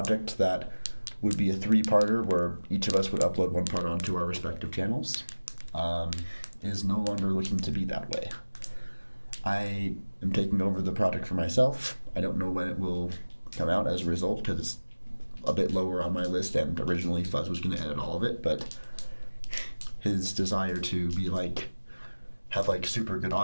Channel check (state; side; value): inverted; both; correlation -1.00